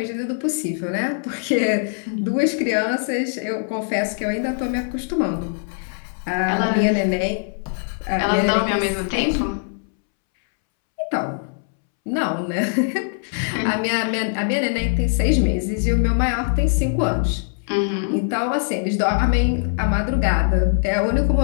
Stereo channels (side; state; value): right; silent; 64 dB below the other